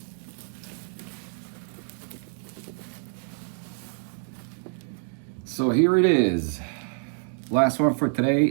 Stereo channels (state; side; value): silent; left; digital silence